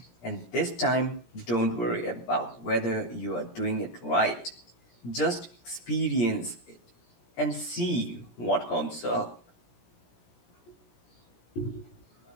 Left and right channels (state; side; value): late; right; 17 ms